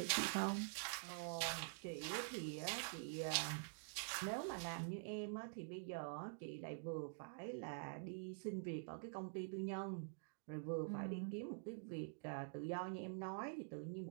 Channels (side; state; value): left; silent; digital silence